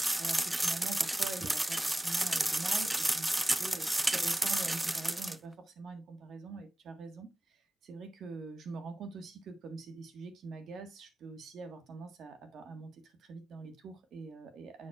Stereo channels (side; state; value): both; normal; correlation 0.96